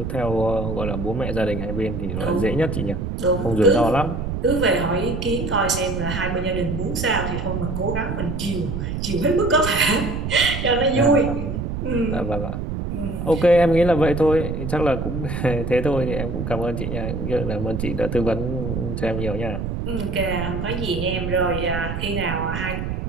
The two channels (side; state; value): right; noise; rumble, 4 dB below the sound